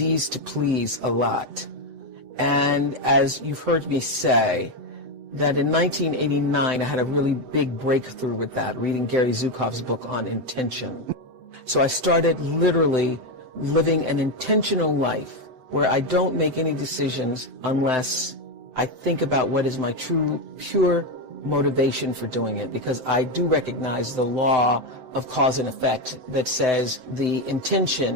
to please a lot. And as you've heard me say, that in 1989, I had a really big breakthrough with that, reading Gary Zukav's book on intention. So I started literally living an intentional life where I don't make any decisions unless I think about what is my true, pure motivation for doing it, because I do recognize the law of cause and effect that says the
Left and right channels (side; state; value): left; late; 7.8 ms